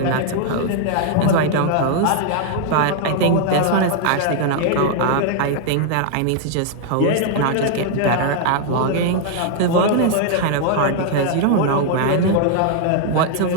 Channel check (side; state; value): both; different; correlation 0.00